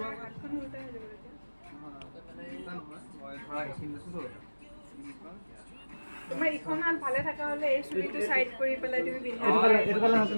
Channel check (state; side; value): inverted; both; correlation -1.00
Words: হাতখন উল্টাই হৈ যাব তেতিয়া মই ধৰা এইখিনি লৈছোঁ তোমাৰ ইখন হাত ভালে থকা হ'লে এই চুলিটো চাইড কৰি পেলাই তুমি পিন্ধিব এইটো কালে